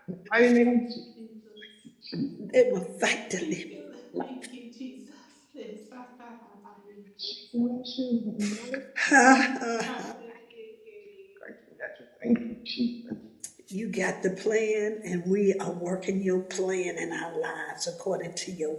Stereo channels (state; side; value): identical; both; correlation 1.00